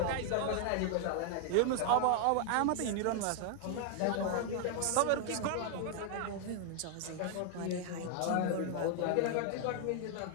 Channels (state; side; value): different; both; correlation 0.00